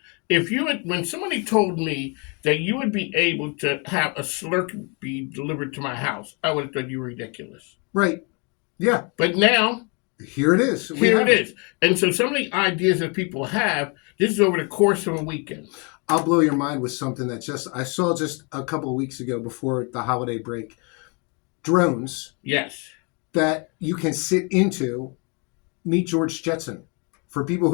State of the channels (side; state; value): right; quieter; 33.2 dB